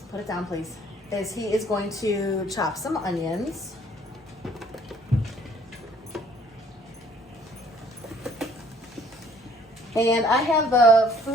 put it down please, is he is going to chop some onions. And I have the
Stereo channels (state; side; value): normal; both; correlation 0.59